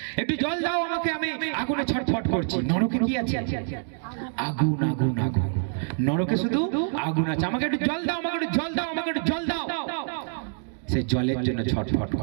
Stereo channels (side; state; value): left; silent; 61 dB below the other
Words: একটু জল দাও আমাকে, আমি আগুনে ছটফট করছি। নরকে কি আছে? আগুন, আগুন, আগুন। নরকে শুধু আগুন আছে। আমাকে একটু জল দাও, আমাকে একটু জল দাও, আমাকে একটু জল দাও। সে জলের জন্য ছটফট